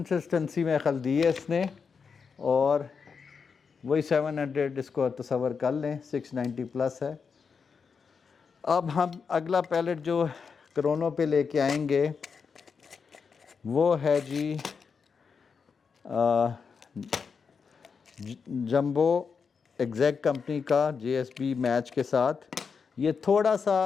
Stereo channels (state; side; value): quieter; right; 5.7 dB